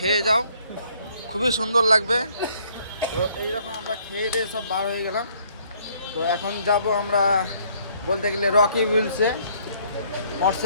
যাও, খুবই সুন্দর লাগবে। তো এইরকম আমরা খেয়ে দিয়ে সব বার হয়ে গেলাম। তো এখন যাব আমরা বলতে গেলে রকি উইলসে,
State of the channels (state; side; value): inverted; both; correlation -0.64